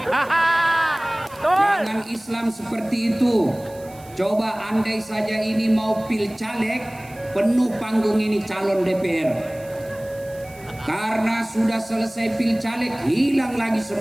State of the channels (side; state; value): right; noise; hiss, 23 dB below the sound